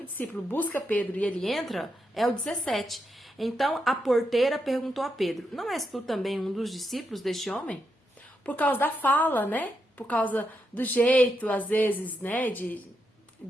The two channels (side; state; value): both; normal; correlation 0.82